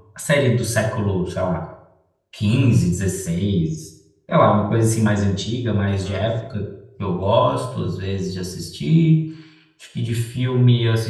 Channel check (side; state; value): both; identical; correlation 1.00